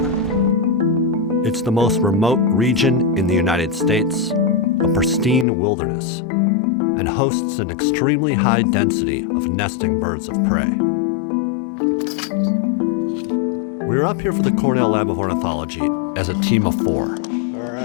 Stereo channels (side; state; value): right; drops out; at 5.5 s